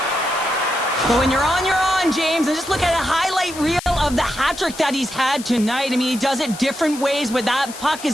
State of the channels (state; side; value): noise; left; hiss, 13 dB below the sound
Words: But when you're on, James, and just look at a highlight reel of the hat-trick that he's had tonight. I mean, he does it different ways. When that puck